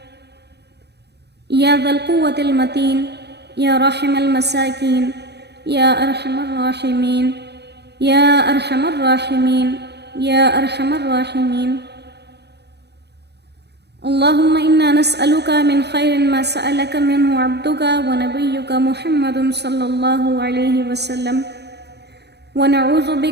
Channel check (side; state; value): left; late; 0.48 ms